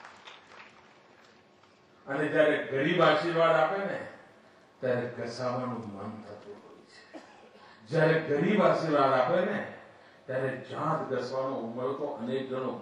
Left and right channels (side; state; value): both; identical; correlation 1.00